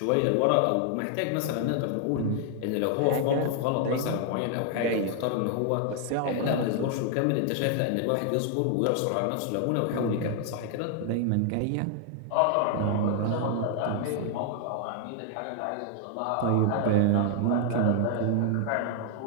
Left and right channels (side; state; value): both; different; correlation 0.00